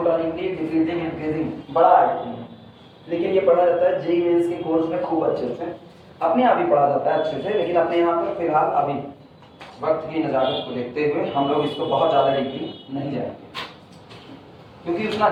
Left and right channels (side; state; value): both; identical; correlation 1.00